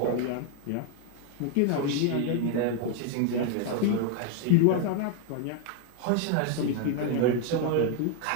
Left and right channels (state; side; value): different; both; correlation 0.00